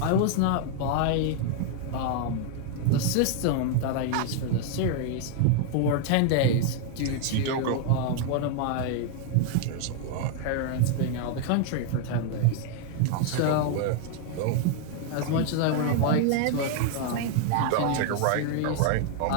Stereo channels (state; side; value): different; both; correlation 0.00